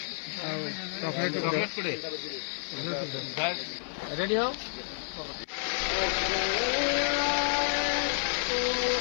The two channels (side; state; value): right; silent; 57 dB below the other